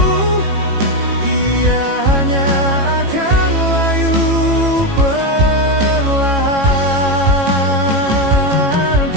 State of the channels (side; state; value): left; late; 18 ms